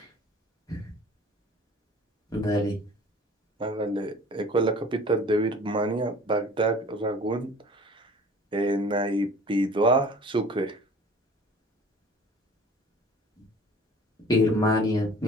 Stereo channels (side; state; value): both; normal; correlation 0.47